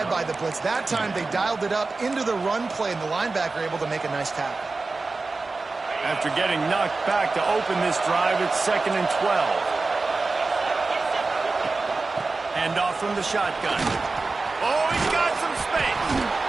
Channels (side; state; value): left; quieter; 3.7 dB